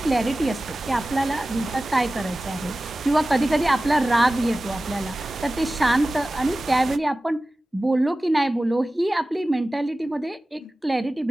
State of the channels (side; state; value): both; normal; correlation 0.96